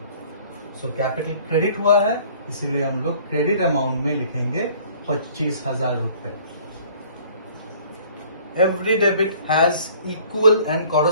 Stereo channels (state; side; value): inverted; both; correlation -0.53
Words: सो कैपिटल क्रेडिट हुआ है, इसीलिए हम लोग क्रेडिट अमाउंट में लिखेंगे 25,000 रुपए। Every debit has equal and